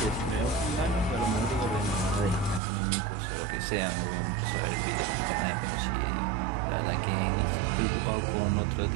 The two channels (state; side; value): drops out; left; at 2.6 s